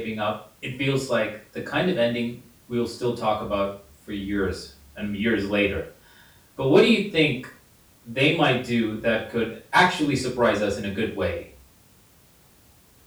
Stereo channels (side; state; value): both; identical; correlation 1.00